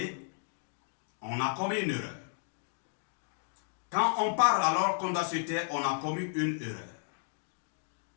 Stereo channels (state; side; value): silent; right; digital silence